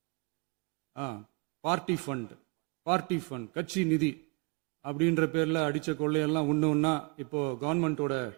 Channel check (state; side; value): quieter; left; 30.5 dB